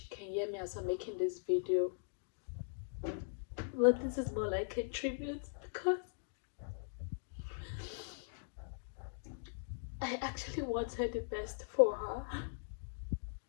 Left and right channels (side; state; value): right; silent; digital silence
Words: can hear me as I'm making this video, but this is more like a tribute because I actually wanted the best for her.